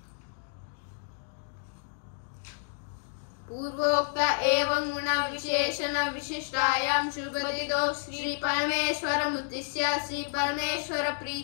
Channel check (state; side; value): silent; right; digital silence